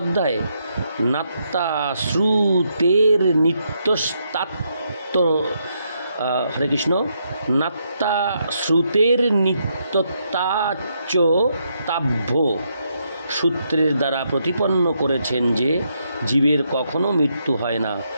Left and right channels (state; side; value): inverted; both; correlation -0.78